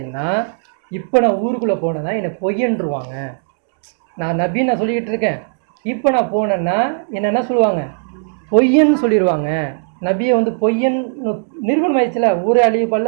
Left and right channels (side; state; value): left; silent; digital silence